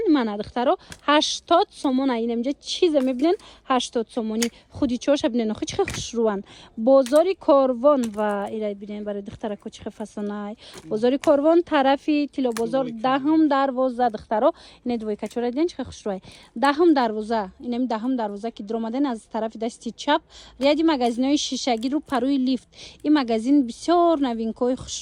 من دخترو 80 سومون این اینجا چیز میبینن 80 سومونی خودی چوش ببینن خو چه خوش روان بازاری کاروان و ایرای ببینن برای دخترکو چه فسانای بازاری کاروان طرفی تیلو بازار دهم دروازه دخترو این دوی کچوره دیدن چه خوش روای دهم دروازه اینم دهم دروازه که در اومدن از طرف دست چپ ریادی مگزینای شیشگی رو پروی لیفت. این مگزین بسیار نوینکای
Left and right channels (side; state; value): both; identical; correlation 1.00